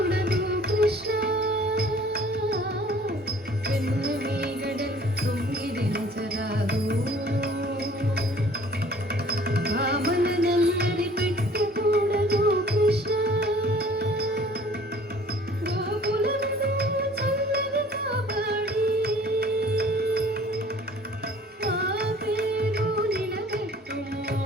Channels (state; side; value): normal; both; correlation 0.52